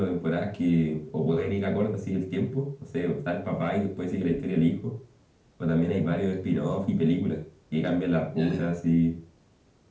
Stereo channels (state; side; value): identical; both; correlation 1.00